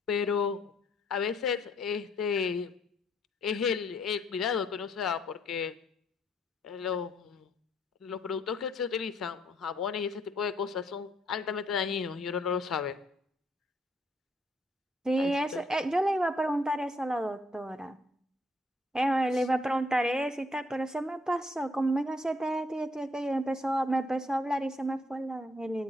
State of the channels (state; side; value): normal; both; correlation 0.68